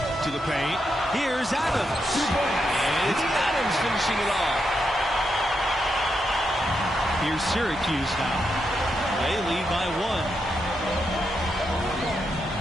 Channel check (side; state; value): both; normal; correlation 0.83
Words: To the paint. Here's Adams. And it's Adams finishing it off. Here's Syracuse now. They lead by